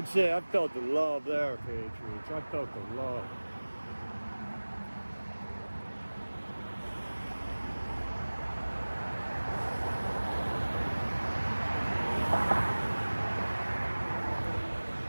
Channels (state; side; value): inverted; both; correlation -1.00